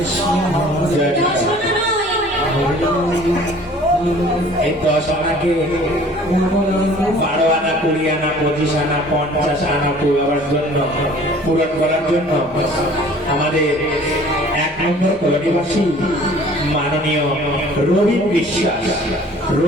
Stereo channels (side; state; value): both; normal; correlation 0.50